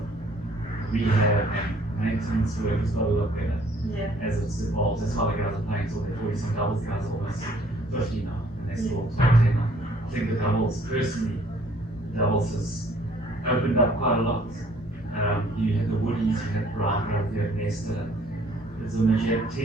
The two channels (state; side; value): normal; both; correlation 0.59